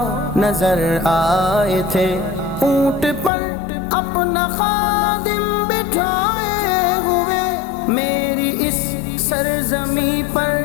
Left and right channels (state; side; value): drops out; right; at 3.3 s